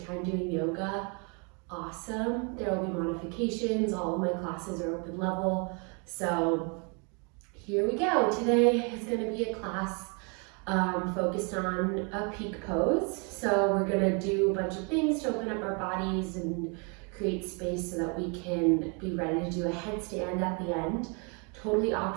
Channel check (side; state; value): left; quieter; 34.8 dB